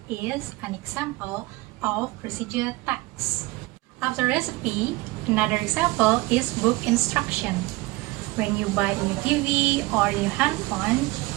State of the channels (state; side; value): quieter; left; 21.5 dB